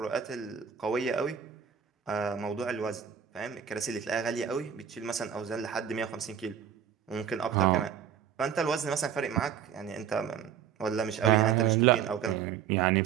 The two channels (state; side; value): quieter; left; 8.3 dB